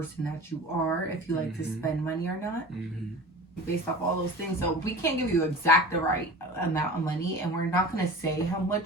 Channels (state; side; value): normal; both; correlation 0.37